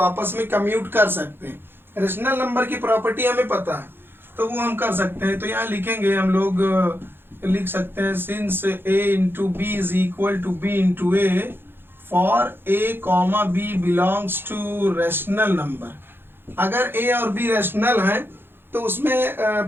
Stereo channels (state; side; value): late; left; 0.10 ms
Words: में कम्यूट कर सकते हैं। रैशनल नंबर की प्रॉपर्टी हमें पता है, तो वो हम कर सकते हैं। तो यहाँ लिखेंगे हम लोग, लिख सकते हैं since a into B is equal to b into A for a comma b belongs to rational number. अगर a और b रैशनल है तो उसमें